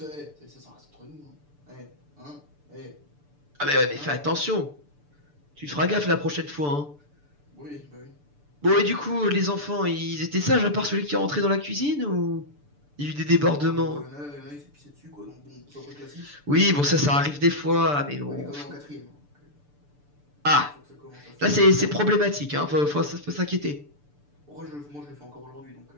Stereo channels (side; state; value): left; late; 6.9 ms